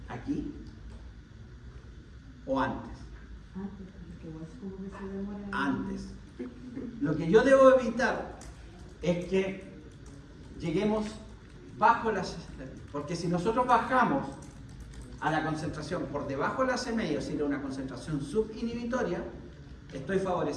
¿Aquí? ¿O antes? Antes. Lo que yo debo evitar es que lleguemos bajo la CMI, porque si nosotros bajamos a la concentración por debajo de la CMI, o sea, una concentración subinhibitoria, estoy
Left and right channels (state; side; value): identical; both; correlation 1.00